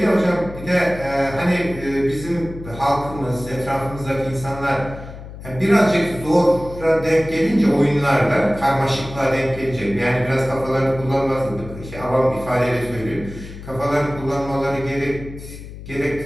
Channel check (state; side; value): noise; left; hum, 13 dB below the sound